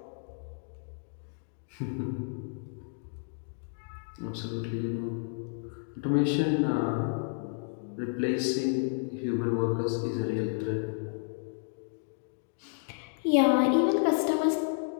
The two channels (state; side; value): silent; right; digital silence